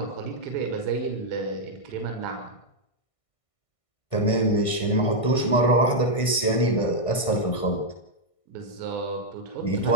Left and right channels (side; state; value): right; late; 1.6 ms